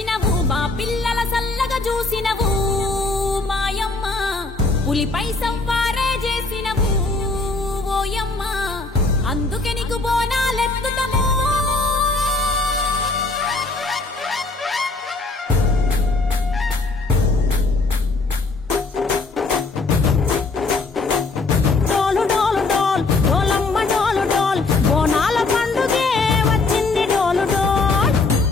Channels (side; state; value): right; quieter; 3.6 dB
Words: మా పిల్లల సల్లగా చూసినవు మాయమ్మ, పులిపై సవ్వారే చేసినవు ఓయమ్మ, అందుకే నీకు బోనాలెత్తుతము.